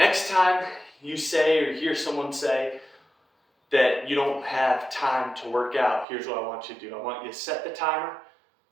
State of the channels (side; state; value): left; drops out; at 6.1 s